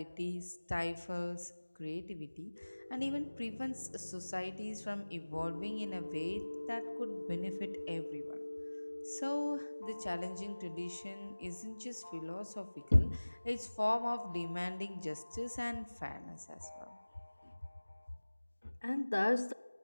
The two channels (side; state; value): both; inverted; correlation -1.00